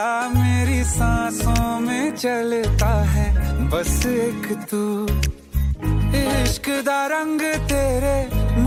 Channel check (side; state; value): both; identical; correlation 1.00